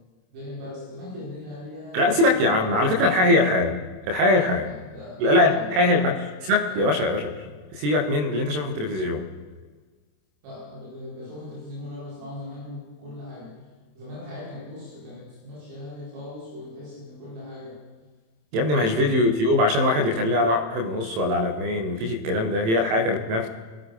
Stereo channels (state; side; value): late; left; 27 ms